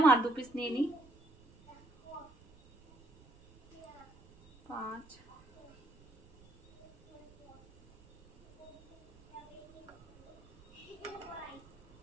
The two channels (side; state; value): right; noise; rumble, 26 dB below the sound